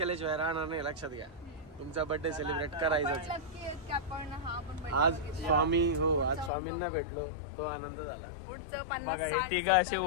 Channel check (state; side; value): drops out; right; at 6.5 s